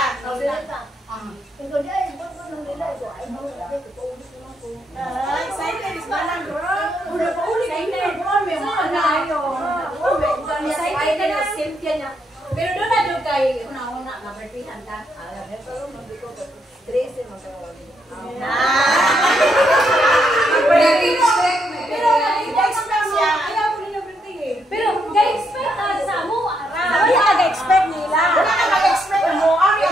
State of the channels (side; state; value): both; normal; correlation 0.77